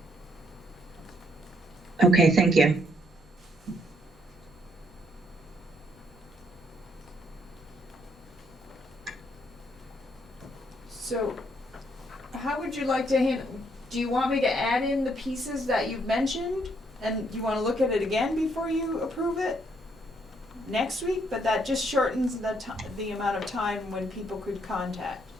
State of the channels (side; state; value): both; normal; correlation 0.71